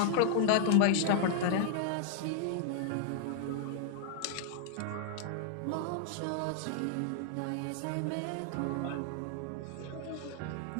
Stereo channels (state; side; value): different; both; correlation 0.00